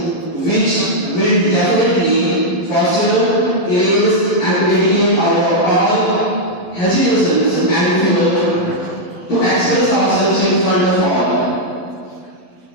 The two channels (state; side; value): late; right; 11 ms